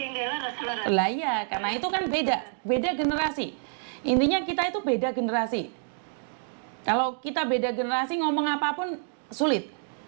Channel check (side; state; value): left; silent; digital silence